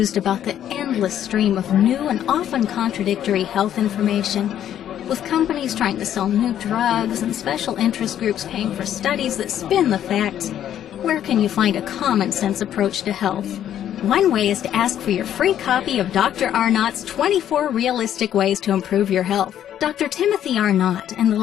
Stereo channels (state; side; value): quieter; right; 10.6 dB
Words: about the endless stream of new and often contradictory health information? With companies trying to sell new drugs and special interest groups paying for studies that spin the facts, where can you find a common sense approach to health? One way is to ask for your free copy of Dr. Arnott's 24 Realistic Ways to Improve Your Health. Dr. Timothy Arnott and the